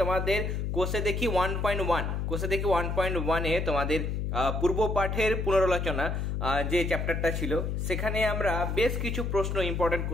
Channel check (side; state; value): left; noise; hum, 1 dB below the sound